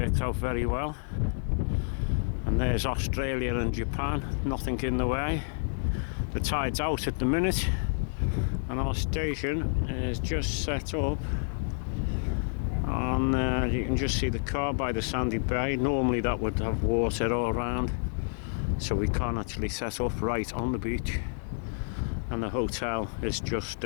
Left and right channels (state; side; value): silent; right; digital silence